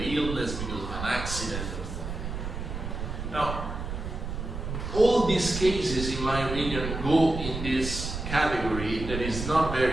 illness, because of an accident or something. Now, all these cases, in my opinion, go in this category that is not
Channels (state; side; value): noise; right; rumble, 6 dB below the sound